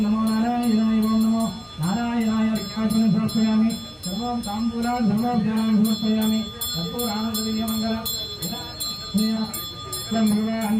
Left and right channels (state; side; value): identical; both; correlation 1.00